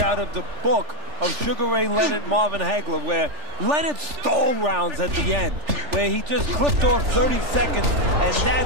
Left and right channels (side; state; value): left; late; 3.4 ms